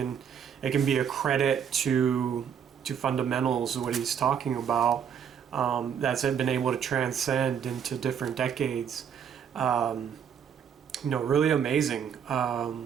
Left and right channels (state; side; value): quieter; left; 8.0 dB